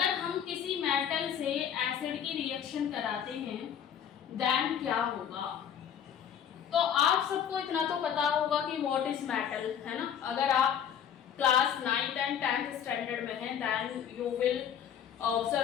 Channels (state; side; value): quieter; right; 8.8 dB